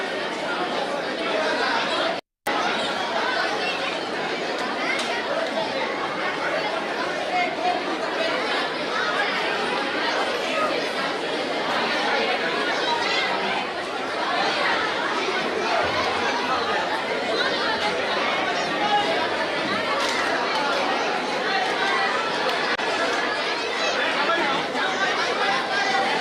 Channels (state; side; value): identical; both; correlation 1.00